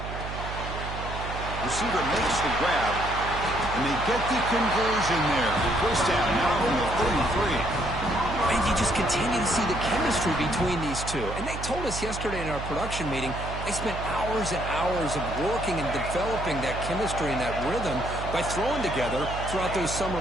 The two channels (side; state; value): right; noise; hum, 7 dB below the sound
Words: Receiver makes the grab, and they get the conversion there. First down, now from the 33. And you just continue to see the chemistry between these two. And they told us yesterday in our production meeting, they spent hours and hours of working and developing that chemistry and that rhythm by throwing together throughout those summer